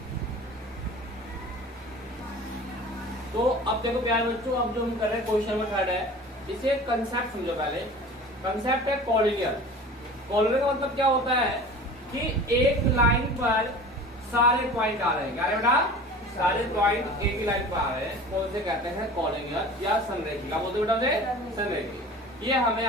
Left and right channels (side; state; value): both; normal; correlation 0.40